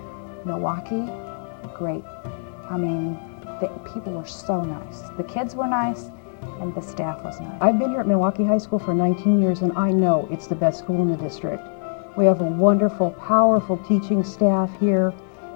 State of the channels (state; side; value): silent; right; digital silence